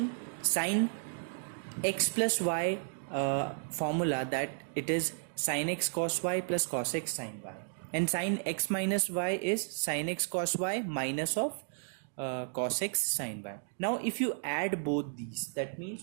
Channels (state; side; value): silent; left; digital silence